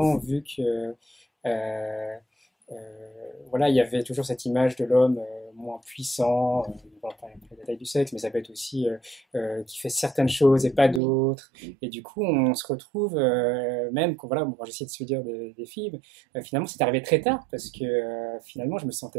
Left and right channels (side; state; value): left; drops out; at 11.0 s